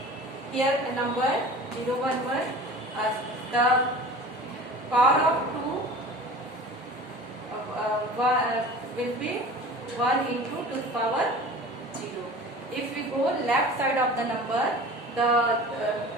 here a number 0 1 1, the power of 2 will be 1 into to the power 0. If we go left side of the number, the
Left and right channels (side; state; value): both; normal; correlation 0.40